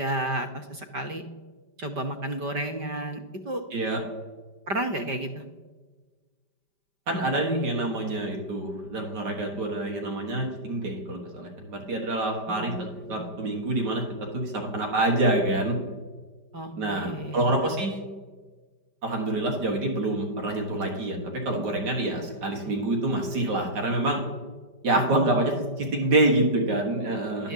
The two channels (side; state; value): left; late; 5.1 ms